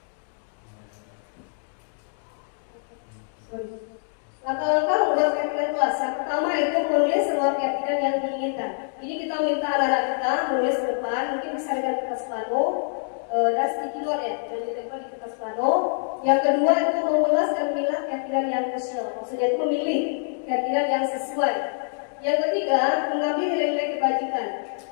Langkah-langkah membuat keyakinan kelas. Yang pertama itu menulis semua keyakinan yang diinginkan. Ini kita minta anak-anak kita menulis ke depan, mungkin bisa dengan kertas plano dan sticky note ya, dan ditempel di kertas plano. Yang kedua itu mengulas dan memilah keyakinan yang krusial. Maksudnya itu memilih keyakinan yang sesuai. Yang ketiga, mengambil nilai-nilai kebajikan.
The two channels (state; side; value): silent; right; digital silence